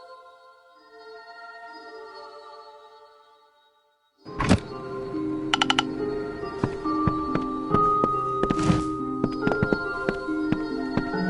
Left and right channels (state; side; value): identical; both; correlation 1.00